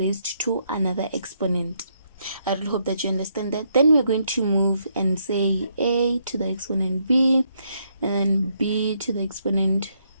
to another exponent. I really hope that you understand that. Then we're going to move and say a to the exponent b, and then b to the exponent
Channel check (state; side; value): inverted; both; correlation -0.75